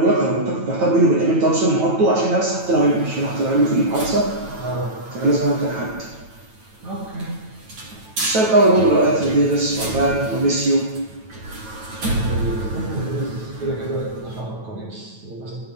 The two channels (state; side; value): late; left; 9.1 ms